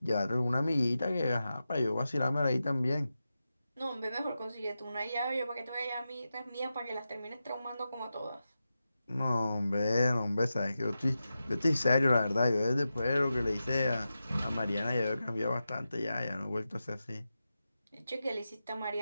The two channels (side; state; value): both; inverted; correlation -0.91